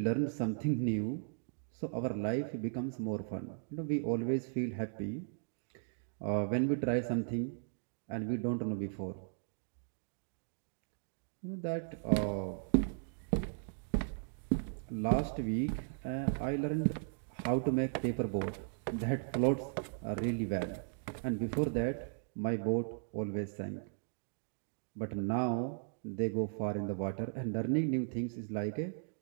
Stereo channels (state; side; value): silent; left; digital silence